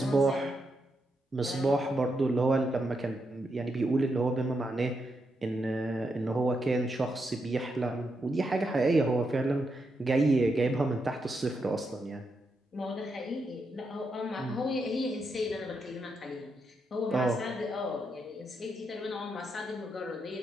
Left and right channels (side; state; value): both; normal; correlation 0.83